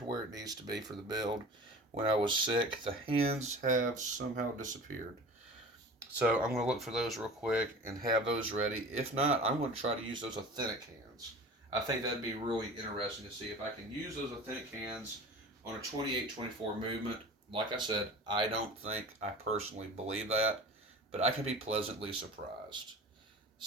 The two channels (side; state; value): both; normal; correlation 0.38